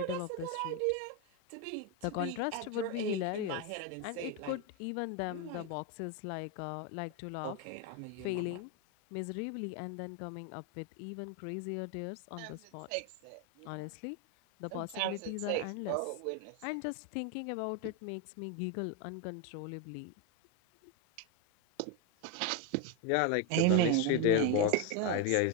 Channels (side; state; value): both; different; correlation 0.02